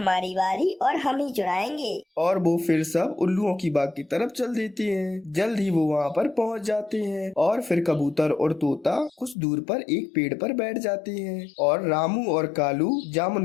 बारी और हम ही चुराएंगे। और वो फिर सब उल्लुओं की बाग की तरफ चल देते हैं। जल्द ही वो वहाँ पर पहुँच जाते हैं और फिर कबूतर और तोता कुछ दूर पर एक पेड़ पर बैठ जाते हैं और रामू और कालू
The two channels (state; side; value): drops out; right; at 9.3 s